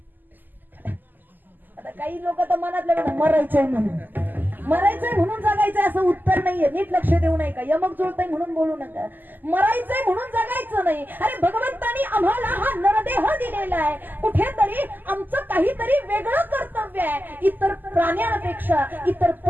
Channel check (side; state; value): left; late; 0.088 ms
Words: आता काही लोक तर मनातले मरायचंय म्हणून. मरायचंय म्हणून जगायचंय असं उत्तर नाहीये. नीट लक्ष देऊ नये का? यमक जुळतंय म्हणून बोलू नका. मरायचंय म्हणून जगायचं नाही. अरे भगवंतानी आम्हाला हा नरदेह दिलेला आहे. कुठेतरी आमचं काहीतरी वेगळं कर्तव्य आहे. इतर प्राण्यांपेक्षा इतर